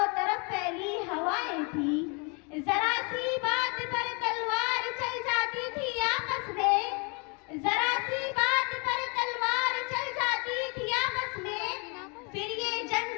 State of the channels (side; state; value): right; quieter; 33.1 dB